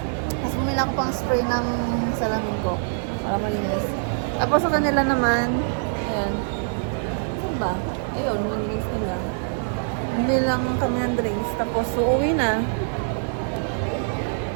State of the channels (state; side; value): silent; left; 62 dB below the other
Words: Tapos bumili ako pang spray ng salamin ko. Para malinis. Tapos sa kanila naman, ayan. Ano ba? Ayun, yung drinks nila. Hindi lang kami ng drinks. Tapos uuwi na.